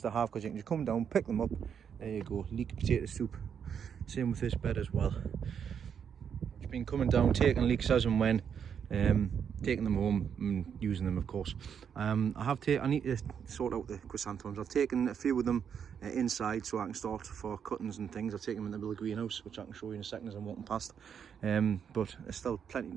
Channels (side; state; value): left; quieter; 7.7 dB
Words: to have, because you can just come down, pick them up. There you go, leek potato soup. Same with this bed as well. Just been coming down, taking leeks as and when. Taking them home and using them, of course. I need to sort out the chrysanthemums. I've taken a few of them inside so I can start for cuttings and things. I've taken them in the little greenhouse, which I can show you in a second as I'm walking past. But there's still